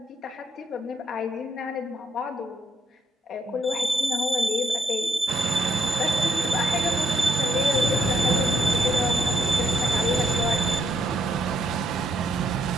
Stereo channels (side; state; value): both; normal; correlation 0.73